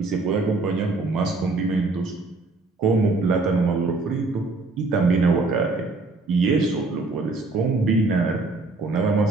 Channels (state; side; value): quieter; left; 3.5 dB